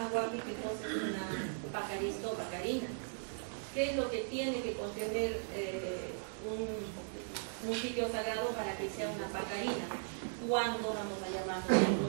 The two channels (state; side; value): silent; left; digital silence